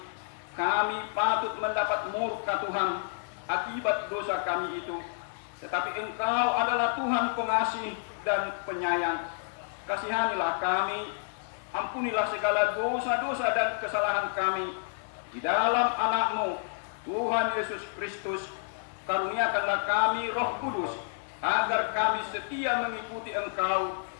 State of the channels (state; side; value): silent; right; 58 dB below the other